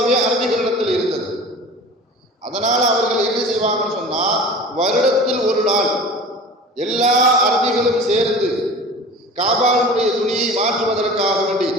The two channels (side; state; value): both; normal; correlation 0.39